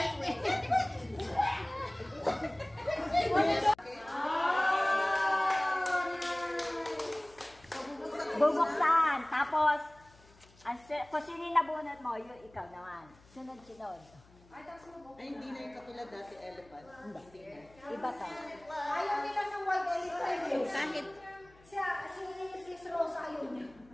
Bubuksan. Tapos, kung sino yung nabunot mo, yun ikaw naman. Sunod-sunod. Ay, hindi na yung katulad dati elephant. Hindi na. Iba ka. Ayaw nila ng white elephant. Kahit Si Rosa ayaw niya.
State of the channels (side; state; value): left; noise; hum, 27 dB below the sound